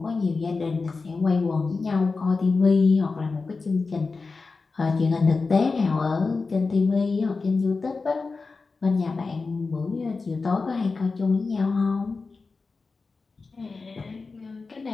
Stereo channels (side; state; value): right; quieter; 4.2 dB